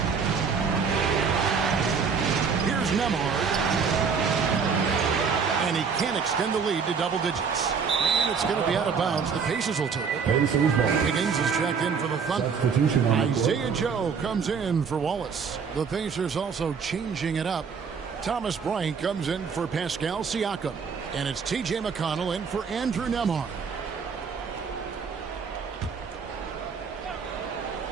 Here's Nembhard. And he can't extend the lead to double digits. And it's going to be out of bounds. The Pacers will take it. Higgins is checked in for the Thunder. Isaiah Joe comes in for Wallace. The Pacers also changing it up. Thomas Bryant comes in for Pascal Siakam. And it's T.J. McConnell in for Andrew Nembhard.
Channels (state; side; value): quieter; left; 5.9 dB